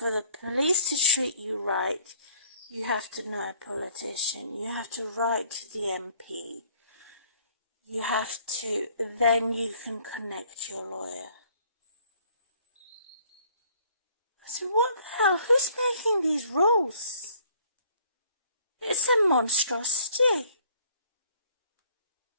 the police to treat you right, you have to know a politician. You have to write to the MP. You have to, then you can connect your lawyer. So what the hell? Who's making these rules? It's a monstrosity.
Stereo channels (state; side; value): inverted; both; correlation -0.60